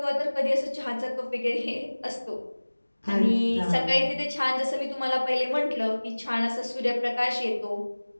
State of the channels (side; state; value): both; inverted; correlation -1.00